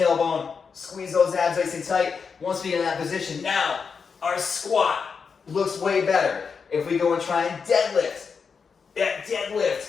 squeeze those abs nice and tight. Once we get in that position, now our squat looks way better. If we go and try and deadlift,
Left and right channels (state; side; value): quieter; right; 5.7 dB